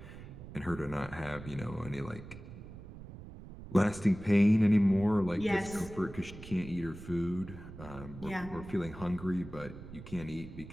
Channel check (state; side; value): noise; right; rumble, 14 dB below the sound